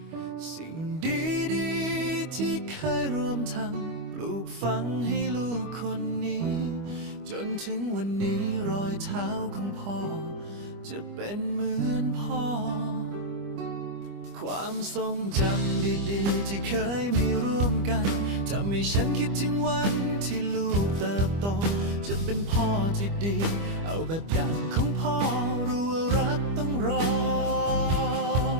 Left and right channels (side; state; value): left; late; 25 ms